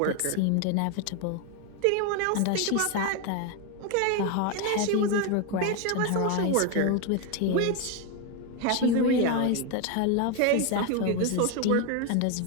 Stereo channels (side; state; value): both; different; correlation 0.01